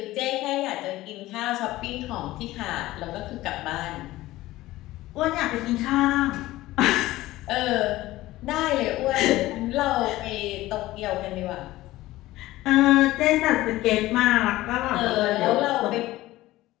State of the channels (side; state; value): right; quieter; 17.0 dB